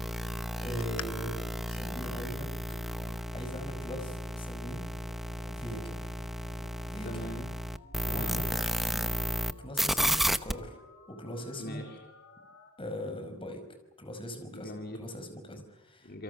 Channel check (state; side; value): normal; both; correlation 0.78